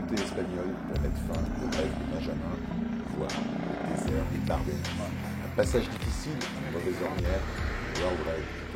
espagnol pour mettre fin au rêve de Benjamin, voir le désert des Bardennes. Un passage difficile, une mauvaise ornière, une World Raid qui te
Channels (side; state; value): both; identical; correlation 1.00